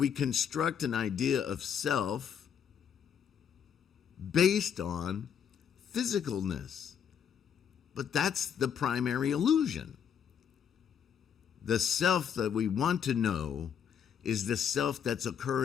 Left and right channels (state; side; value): quieter; right; 8.0 dB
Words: construct an idea of self based on physicalness. But that's the primary illusion. The self that we want to know is the self that's